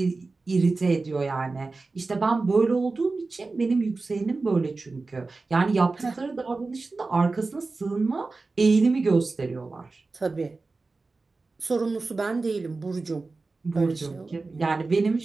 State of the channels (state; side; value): quieter; left; 3.7 dB